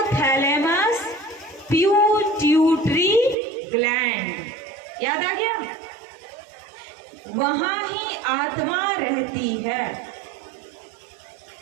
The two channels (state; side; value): drops out; left; at 3.4 s